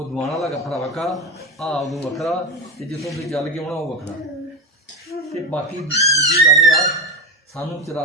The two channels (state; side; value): normal; both; correlation 0.18